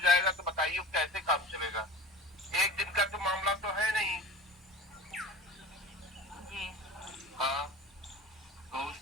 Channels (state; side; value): normal; both; correlation 0.37